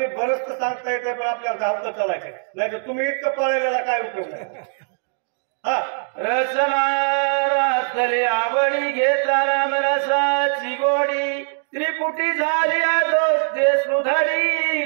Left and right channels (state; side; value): silent; left; digital silence